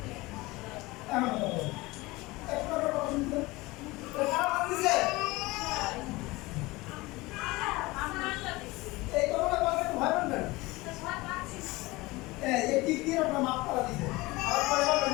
এমন কথা বলো। একটা কথা শুনতে। কারা বান্ধিছে? এই কথাটা বলতে ভয় পাবেন? এই টিক দিয়ে আপনার মাপ করা দিছে। আর পরে বলবেন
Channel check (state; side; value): quieter; right; 21.6 dB